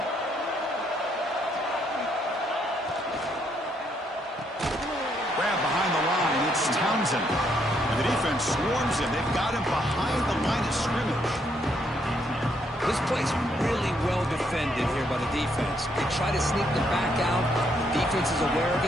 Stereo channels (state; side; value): normal; both; correlation 0.73